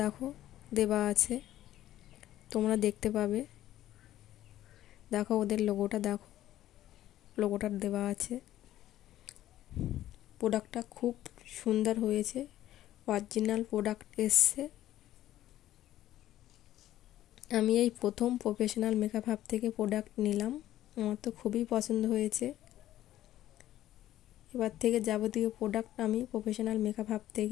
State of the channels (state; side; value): quieter; right; 13.3 dB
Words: দেখো দেওয়া আছে, তোমরা দেখতে পাবে। দেখো ওদের লোগোটা, দেখো লোগোটা দেওয়া আছে। প্রোডাক্টটা খুব সুন্দর হয়েছে, অরিজিনাল প্রোডাক্ট এসছে। আমি এই প্রথম প্রফেশনাল মেকআপ হাব থেকে প্রোডাক্ট নিলাম, আমার তো খুবই পছন্দ হয়েছে। এবার থেকে যাবতীয় প্রোডাক্ট আমি প্রফেশনাল মেকআপ হাব